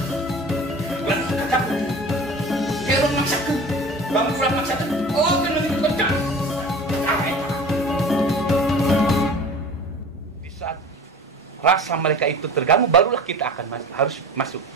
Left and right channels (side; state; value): both; normal; correlation 0.39